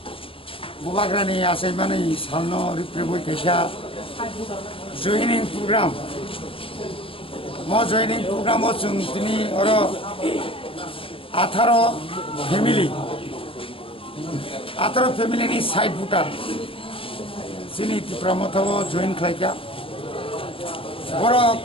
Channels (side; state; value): right; late; 0.26 ms